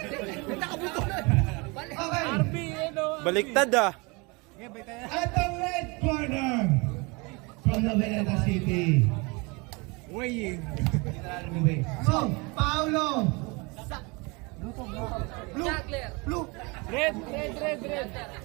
RB, Baliktad ah. At the red corner from the Veneta City. Weighing. So, Paolo. Blue. Red.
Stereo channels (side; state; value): left; quieter; 28.0 dB